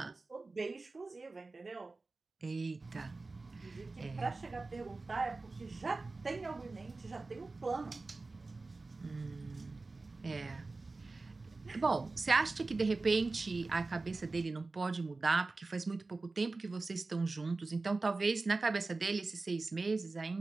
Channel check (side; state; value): left; quieter; 3.6 dB